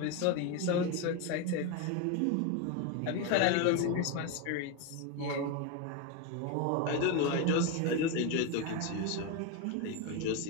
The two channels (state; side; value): different; both; correlation 0.03